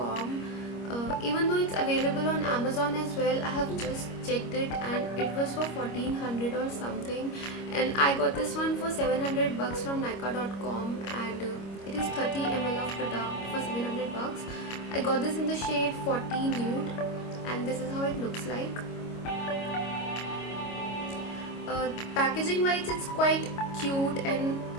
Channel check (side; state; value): right; late; 25 ms